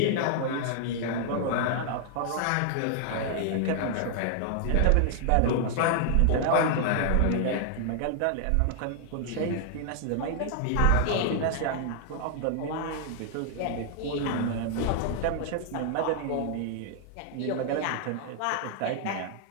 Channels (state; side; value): different; both; correlation 0.00